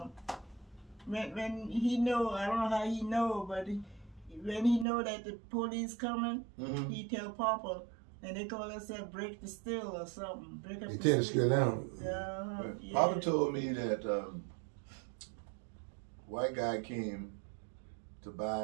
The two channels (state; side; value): drops out; left; at 4.9 s